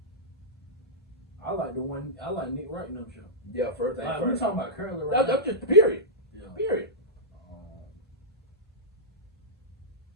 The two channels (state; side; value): normal; both; correlation -0.14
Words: I like Nick Wright and them show. Yeah, first thing. We're talking about currently right now. That's just period. Yeah. Period.